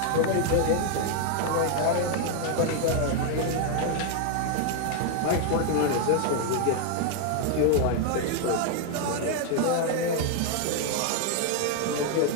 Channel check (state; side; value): different; both; correlation 0.00